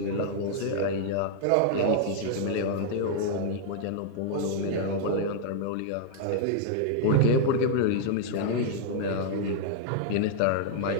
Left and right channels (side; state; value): both; different; correlation -0.01